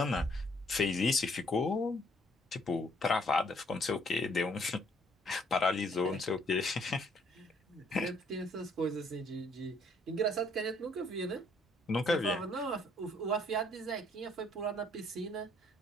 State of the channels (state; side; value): normal; both; correlation 0.65